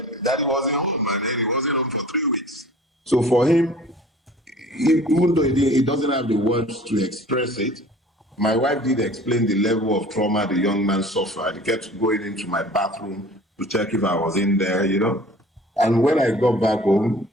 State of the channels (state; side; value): normal; both; correlation 0.46